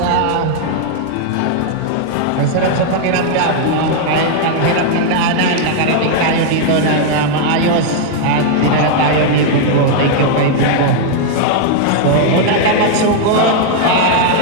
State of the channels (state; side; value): different; both; correlation 0.00